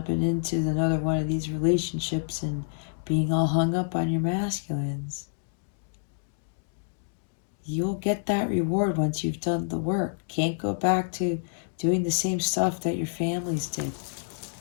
into another one of these relationships and being all hung up on your masculines. You'll get that reward once you've done the work. Can't go back to doing the same stuff that your families did.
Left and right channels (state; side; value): silent; right; digital silence